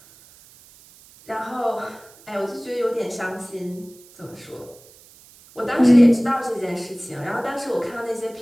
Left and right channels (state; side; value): noise; right; hiss, 24 dB below the sound